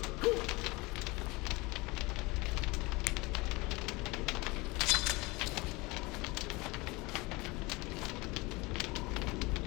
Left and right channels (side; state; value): right; quieter; 23.9 dB